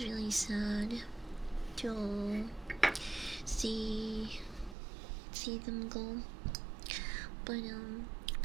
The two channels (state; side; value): drops out; left; at 4.8 s